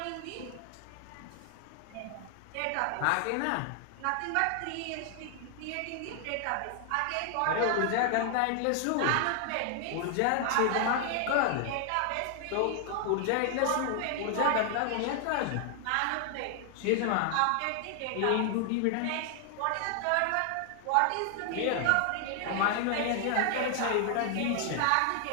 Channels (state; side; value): different; both; correlation 0.00